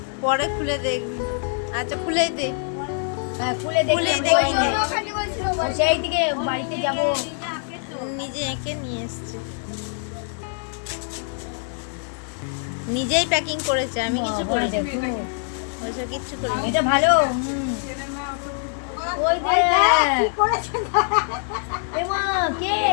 পরে খুলে দেখবি। আচ্ছা খুলেই দে, খুলেই দেখি নে। সেই থেকে বাড়িতে যাব নিজে এঁকে নিয়ে এসছে, নিজেই প্যাকিং করেছে, আমি কিছু বাবা, করিনি। দেখো। ওইসব কিচ্ছু করিনি। এটা ভালো ওই দেখ এমা কে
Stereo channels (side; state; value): right; silent; 57 dB below the other